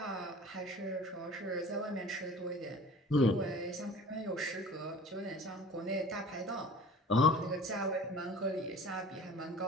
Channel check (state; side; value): normal; both; correlation 0.44